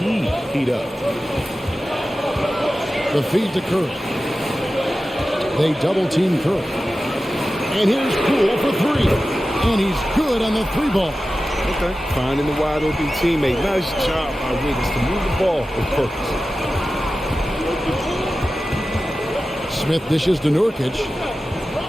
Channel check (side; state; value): both; normal; correlation 0.94